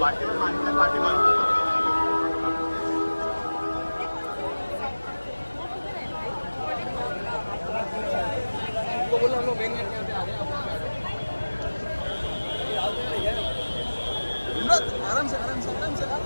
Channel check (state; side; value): inverted; both; correlation -1.00